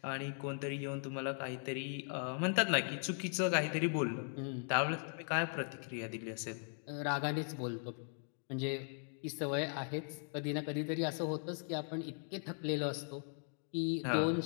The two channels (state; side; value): silent; right; 52 dB below the other